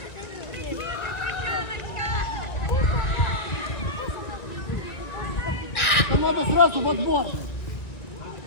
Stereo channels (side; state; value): right; late; 1.6 ms